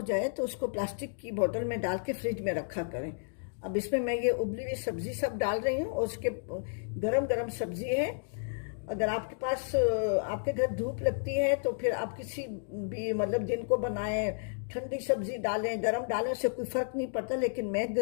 जाए तो उसको प्लास्टिक की बोतल में डाल के फ्रिज में रखा करें। अब इसमें मैं ये उबली हुई सब्जी सब डाल रही हूँ और उसके गरम गरम सब्जी है। अगर आपके पास आपके घर धूप लगती है तो फिर आप किसी भी मतलब दिन को बनाएं, ठंडी सब्जी डालें गरम डालें, उससे कोई फ़र्क नहीं पड़ता। लेकिन मैं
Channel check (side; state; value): right; silent; digital silence